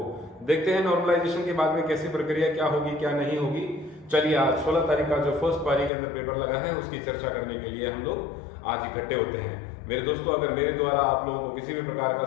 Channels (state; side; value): drops out; right; at 5.9 s